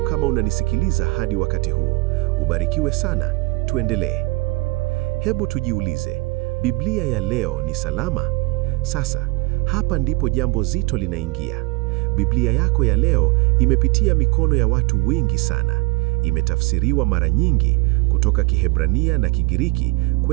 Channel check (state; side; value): quieter; left; 23.2 dB